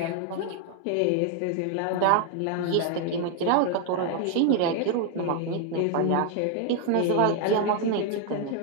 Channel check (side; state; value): both; different; correlation 0.01